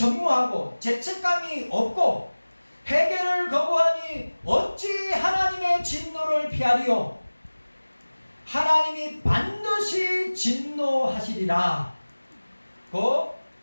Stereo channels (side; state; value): both; inverted; correlation -1.00